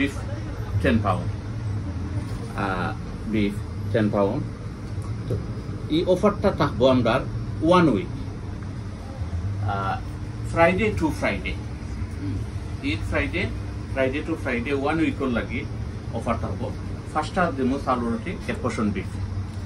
10 পাউন্ড, বিফ 10 পাউন্ড। তো এই অফারটা থাকবো আমরা 1 week, Friday to Friday. Eid Friday to Friday 1 উইকের লাগি অফার থাকবো। 5টা দেবো চাউল রুটি 1% বিফ।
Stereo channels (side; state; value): both; identical; correlation 1.00